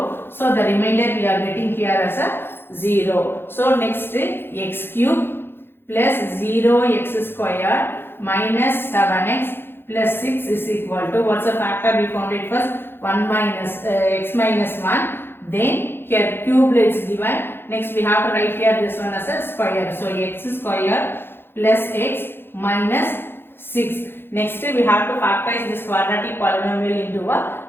So the remainder we are getting here as a 0. So next x cube plus 0x squared minus 7x plus 6 is equal to, what's the factor we found it first? 1 minus x minus 1. Then here cube is given. Next we have to write here this one as a square. So x squared plus x minus 6. Next we have to factorize this quadratic polynomial into a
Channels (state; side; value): late; right; 0.10 ms